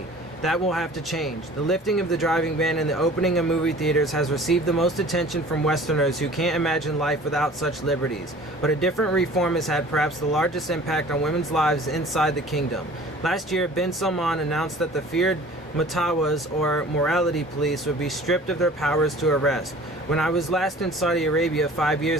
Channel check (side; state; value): both; normal; correlation 0.46